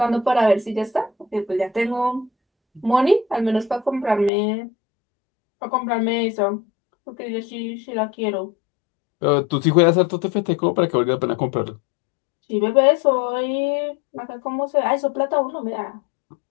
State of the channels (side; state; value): right; drops out; at 4.3 s